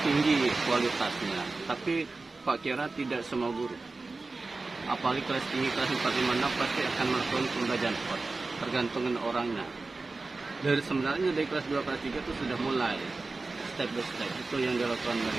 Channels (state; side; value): quieter; left; 3.6 dB